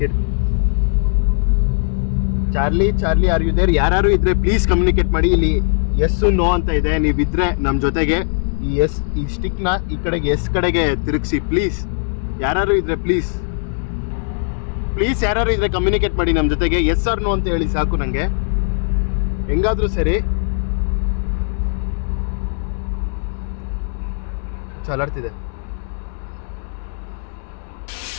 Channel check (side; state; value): right; silent; 67 dB below the other